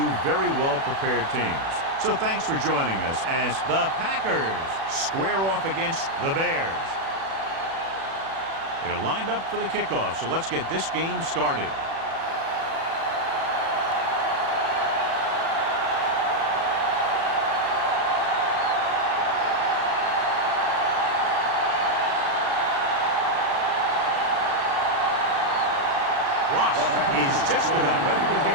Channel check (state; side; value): late; left; 36 ms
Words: very well-prepared teams. So thanks for joining us as the Packers square off against the Bears. They're lined up for the kickoff, so let's get this game started. Ross is just about ready to kick